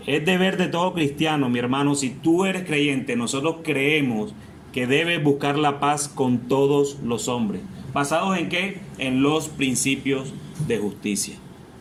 es deber de todo cristiano, mi hermano, si tú eres creyente, nosotros creemos que debes buscar la paz con todos los hombres. ¿Basados en qué? En los principios de justicia.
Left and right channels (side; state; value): both; identical; correlation 1.00